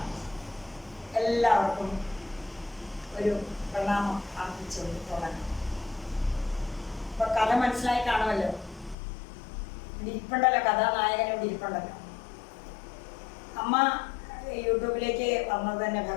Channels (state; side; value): drops out; right; at 9.0 s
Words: എല്ലാവർക്കും ഒരു പ്രണാമം അർപ്പിച്ചുകൊണ്ട് തുടങ്ങാം. ഇപ്പൊ കഥ മനസ്സിലായി കാണുമല്ലോ. ഇവിടെ ഇരിപ്പുണ്ടല്ലോ, കഥാനായകൻ ഇവിടെ ഇരിപ്പുണ്ടല്ലോ. അമ്മ യൂട്യൂബിലേക്ക് വന്നത് തന്നെ